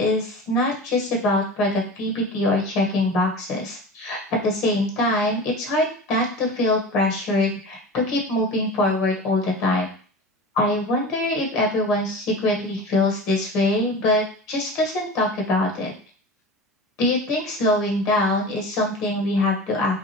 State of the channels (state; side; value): normal; both; correlation 0.32